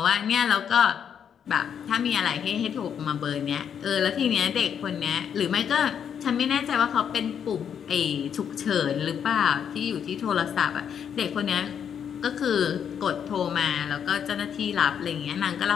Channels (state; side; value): quieter; right; 8.1 dB